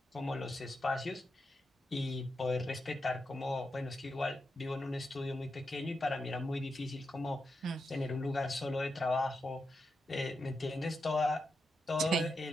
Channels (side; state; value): both; normal; correlation 0.87